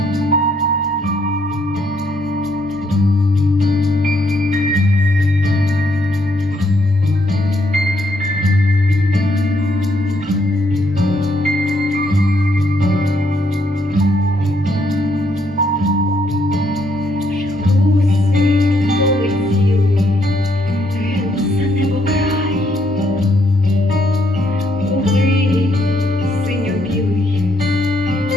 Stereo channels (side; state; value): both; normal; correlation 0.72